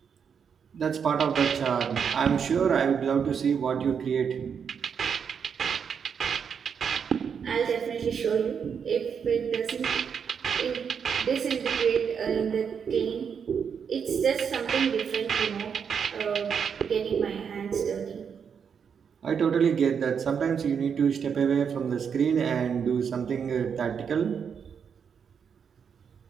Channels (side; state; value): left; quieter; 6.9 dB